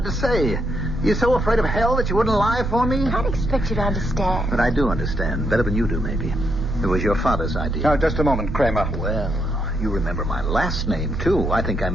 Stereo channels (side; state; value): both; normal; correlation 0.78